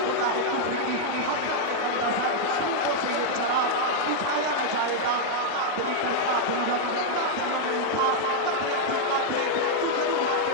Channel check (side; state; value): both; different; correlation -0.01